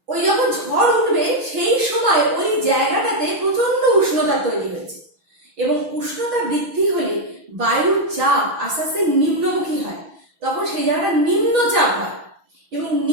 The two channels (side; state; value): left; late; 6.2 ms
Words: ওই যখন ঝড় উঠবে সেই সময় ওই জায়গাটাতে প্রচন্ড উষ্ণতা তৈরি হয়েছে, এবং উষ্ণতা বৃদ্ধি হলে বায়ুর চাপ আস্তে আস্তে নিম্নমুখী হয়, তখন সেই জায়গাটা নিম্নচাপ হয়। এবং